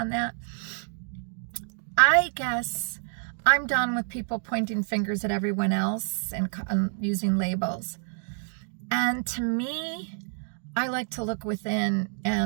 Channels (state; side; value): silent; left; 59 dB below the other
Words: that. I guess I'm done with people pointing fingers at everyone else and using labels. And to me, I like to look within